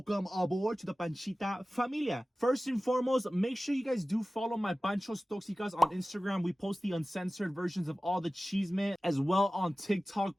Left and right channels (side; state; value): both; normal; correlation 0.96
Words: aboard to the Panchita familia. First and foremost, make sure you guys do follow my Pancho's Toxicas on Instagram. We post the uncensored versions of all the cheesemen, as well on TikTok.